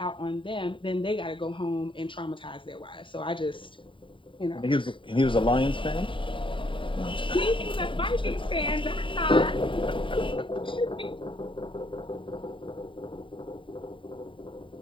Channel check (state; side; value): late; right; 0.25 ms